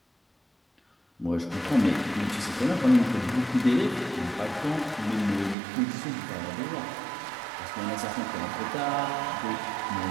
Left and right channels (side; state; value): left; drops out; at 5.6 s